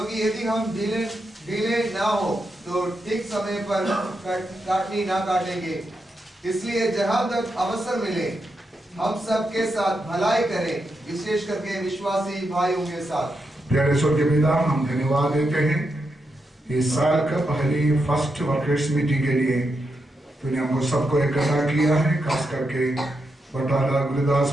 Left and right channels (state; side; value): normal; both; correlation 0.85